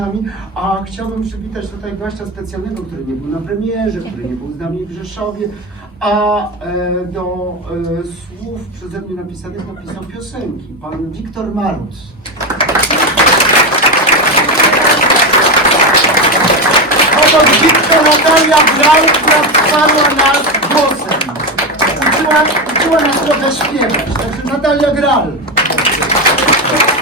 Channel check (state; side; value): normal; both; correlation 0.14